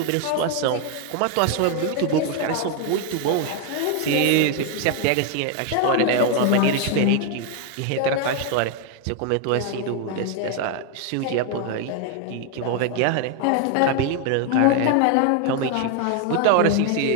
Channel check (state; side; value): different; both; correlation 0.01